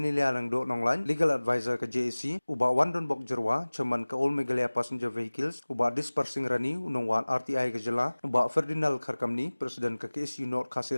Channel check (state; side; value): inverted; both; correlation -1.00